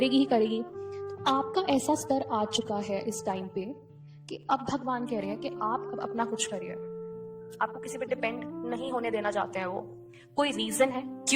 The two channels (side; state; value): both; identical; correlation 1.00